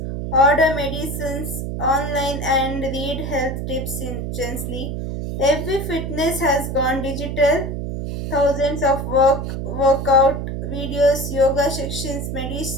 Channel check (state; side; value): noise; right; hum, 4 dB below the sound